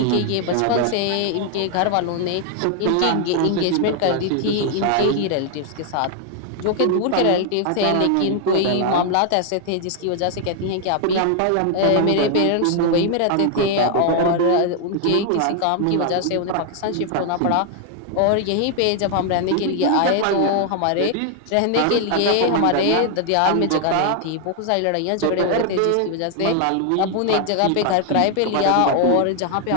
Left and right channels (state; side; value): different; both; correlation 0.00